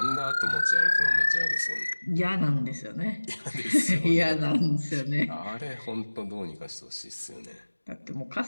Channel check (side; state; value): both; inverted; correlation -1.00